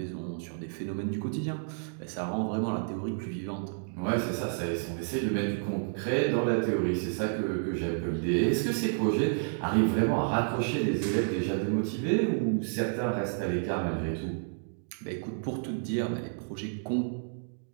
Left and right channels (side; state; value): left; silent; digital silence